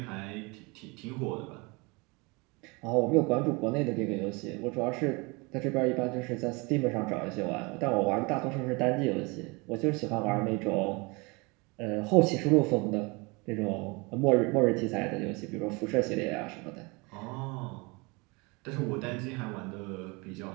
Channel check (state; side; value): quieter; left; 27.4 dB